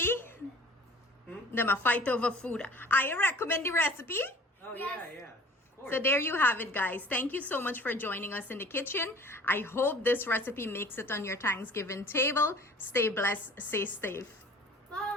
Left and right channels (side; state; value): both; normal; correlation 0.48